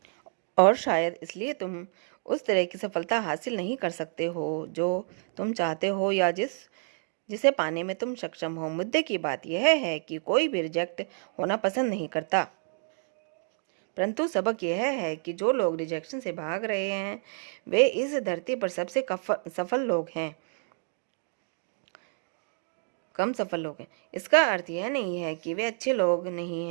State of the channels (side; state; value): left; silent; 58 dB below the other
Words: और शायद इसलिए तुम उस तरह की सफलता हासिल नहीं कर सकते हो जो तुम चाहते हो या जिसे पाने में तुम सक्षम हो। मुद्दे की बात यह है कि कोई भी रिजेक्ट होना पसंद नहीं करता। परंतु सबक यह है कि जो लोग रिजेक्शन से भाग रहे हैं वे इस धरती पर सबसे सफल लोग हैं, कम सफल लोग हैं। इसका अर्थ यह नहीं है कि वे अच्छे लोग नहीं